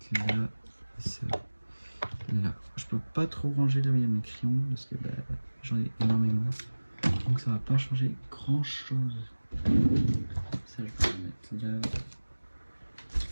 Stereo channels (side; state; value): both; inverted; correlation -1.00